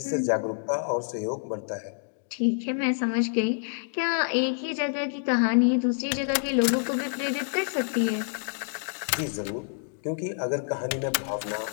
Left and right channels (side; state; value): right; silent; 60 dB below the other